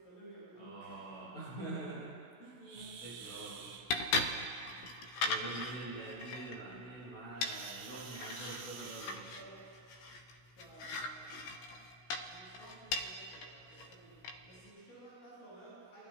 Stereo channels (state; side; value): late; right; 16 ms